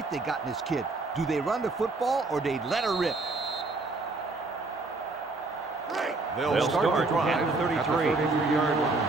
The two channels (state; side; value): quieter; left; 3.4 dB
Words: they got in this kid. Do they run the football or they let her rip? They'll start the drive at the 33. At the 33-yard